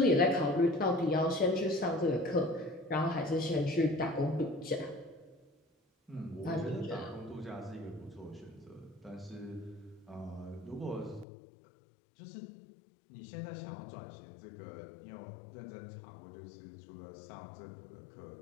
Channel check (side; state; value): right; drops out; at 11.2 s